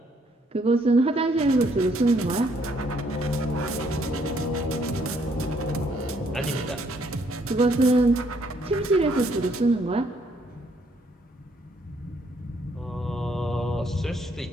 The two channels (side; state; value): both; normal; correlation 0.68